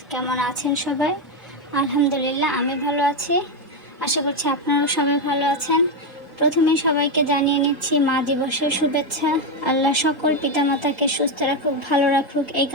কেমন আছেন সবাই? আলহামদুলিল্লাহ, আমি ভালো আছি। আশা করছি আপনারাও সবাই ভালো আছেন। প্রথমেই সবাইকে জানিয়ে নিচ্ছি মা দিবসের শুভেচ্ছা। আল্লাহ সকল পিতামাতাকে সুস্থ রাখুক, ভালো রাখুক, এই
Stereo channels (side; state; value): both; normal; correlation 0.07